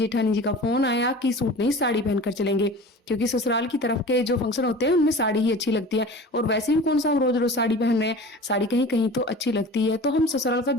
जी का फोन आया कि सूट नहीं साड़ी पहनकर चलेंगे, क्योंकि ससुराल की तरफ के जो फंक्शन होते हैं उनमें साड़ी ही अच्छी लगती है। और वैसे भी कौन सा हम रोज रोज साड़ी पहन रहे हैं, साड़ी कहीं कहीं तो अच्छी लगती है। तो हम ससुराल का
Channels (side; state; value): both; normal; correlation 0.38